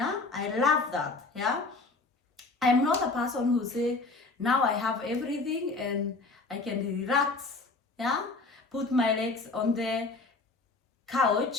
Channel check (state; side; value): quieter; right; 3.7 dB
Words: I love that. Yeah, I'm not a person who say now I have everything and I can relax. Yeah, put my legs on the